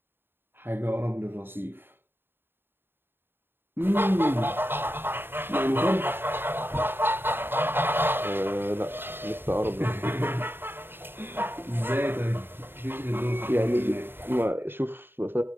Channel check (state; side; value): late; left; 0.10 ms